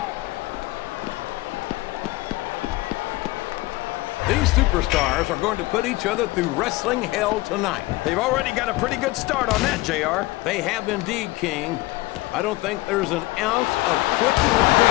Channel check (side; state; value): right; quieter; 20.0 dB